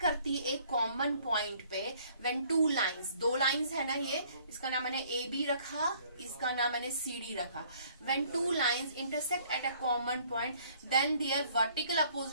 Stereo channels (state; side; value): inverted; both; correlation -0.59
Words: करती एक कॉमन पॉइंट पे, व्हेन टू लाइंस, दो लाइंस है ना, ये इसका नाम मैंने ए बी रखा, इसका नाम मैंने सी डी रखा। When two lines intersect at a common point, then there vertical